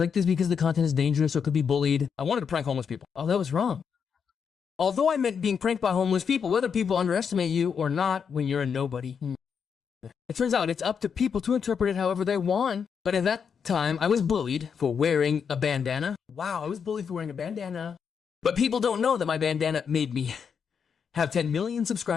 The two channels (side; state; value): right; quieter; 6.7 dB